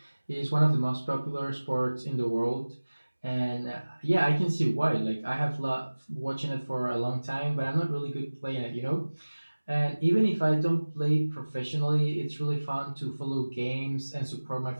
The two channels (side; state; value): both; inverted; correlation -1.00